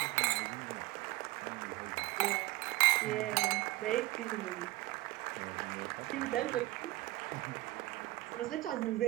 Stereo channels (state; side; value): quieter; left; 19.0 dB